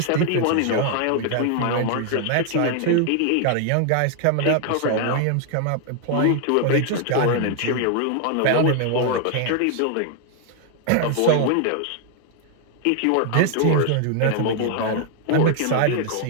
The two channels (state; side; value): different; both; correlation 0.00